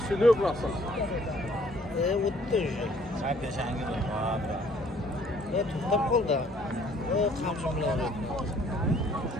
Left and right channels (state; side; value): normal; both; correlation 0.60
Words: burası. O'tdi уже. Sakın şangir olma. To'xtab qoldi. Qamchi bilan urdi.